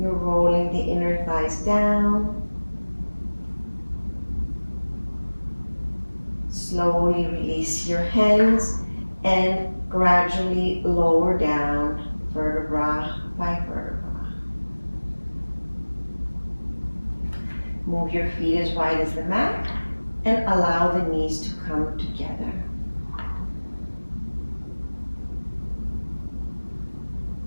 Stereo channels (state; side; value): inverted; both; correlation -1.00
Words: rolling the inner thighs down. Slowly release your hands and gradually lower down vertebra by vertebra. Move your feet as wide as the mat and allow the knees to come together.